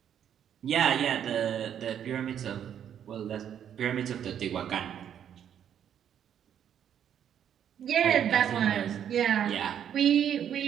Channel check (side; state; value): left; quieter; 9.3 dB